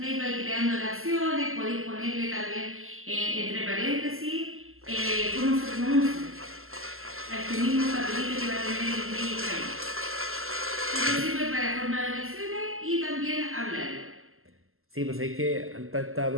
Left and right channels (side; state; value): left; late; 0.62 ms